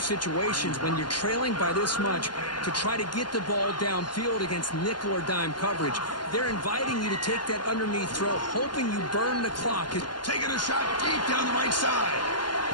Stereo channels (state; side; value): late; right; 0.71 ms